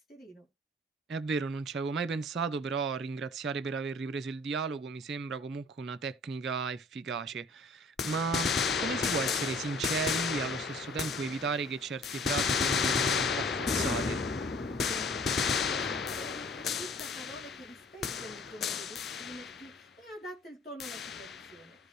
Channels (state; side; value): normal; both; correlation 0.52